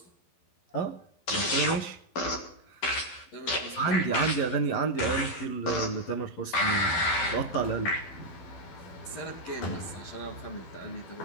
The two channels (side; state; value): right; late; 12 ms